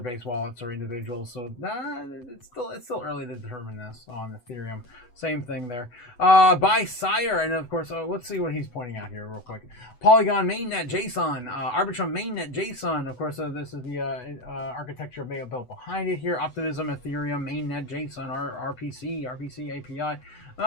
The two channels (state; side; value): late; right; 8.0 ms